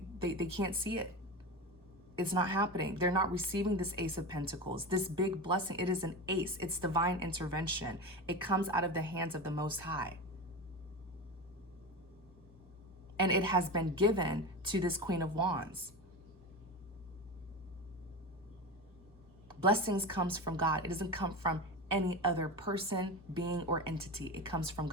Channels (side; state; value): both; normal; correlation 0.24